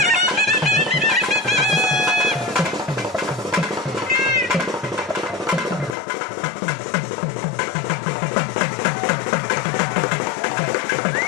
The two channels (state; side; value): drops out; right; at 6.0 s